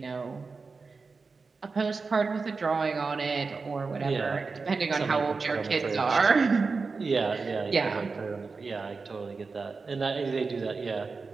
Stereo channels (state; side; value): quieter; left; 4.4 dB